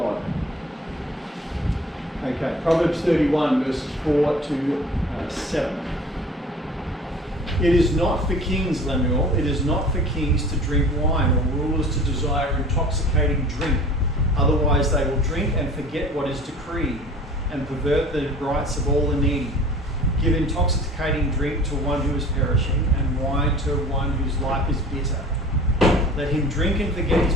Okay, Proverbs 31, verses 4 to 7. It is not for kings, Lemuel, it is not for kings to drink wine, or rulers to desire intoxicating drink. Otherwise they will drink and forget what is decreed, and pervert the rights of all the needy. Give intoxicating drink to one who is perishing, and wine to one whose life is bitter. Let him drink and forget his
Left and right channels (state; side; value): normal; both; correlation 0.44